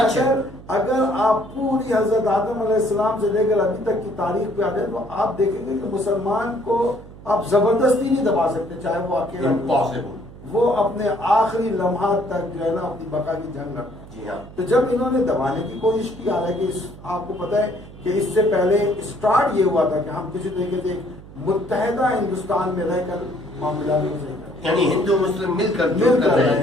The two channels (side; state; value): right; noise; hum, 18 dB below the sound